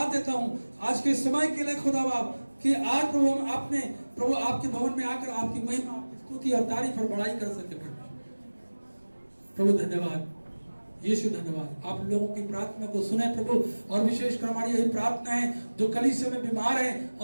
देता हूं आज के समय के लिए खुदा बाप, कि आज प्रभु हम आपने प्रभु आपके भवन में आकर आपकी महिमा, आपकी स्तुति और तारीफ और बड़ाई कर सके। प्रभु धन्यवाद, यीशु धन्यवाद। आप लोगों की प्रार्थना को सुने प्रभु, और विशेषकर हमारी यही प्रार्थना है जो कलीसिया में बीमार हैं,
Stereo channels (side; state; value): both; inverted; correlation -1.00